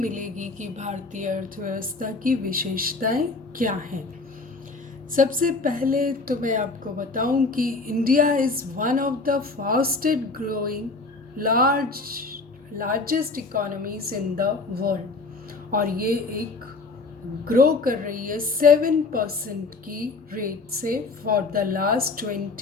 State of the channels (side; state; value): right; quieter; 3.7 dB